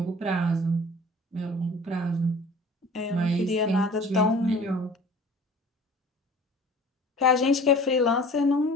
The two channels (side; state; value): both; normal; correlation 0.45